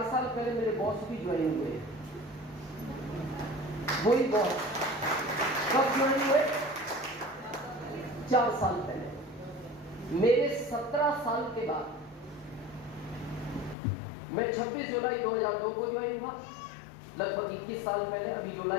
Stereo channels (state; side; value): drops out; right; at 13.8 s